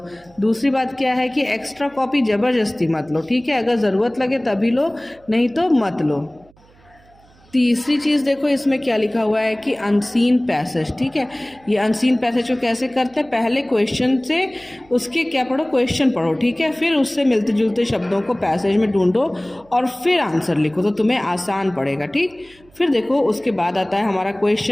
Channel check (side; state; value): right; noise; hum, 29 dB below the sound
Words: दूसरी बात क्या है कि एक्स्ट्रा कॉपी ज़बरदस्ती मत लो, ठीक है। अगर ज़रूरत लगे तभी लो, नहीं तो मत लो। तीसरी चीज़ देखो, इसमें क्या लिखा हुआ है कि अनसीन पैसेज, ठीक है। ये अनसीन पैसेज को कैसे करते हैं, पहले क्वेश्चन से उसके क्या पढ़ो, क्वेश्चन पढ़ो, ठीक है। फिर उससे मिलते जुलते शब्दों को पैसेज में ढूंढो और फिर आंसर लिखो, तो तुम्हें आसान पड़ेगा, ठीक। फिर देखो उसके बाद आता है हमारा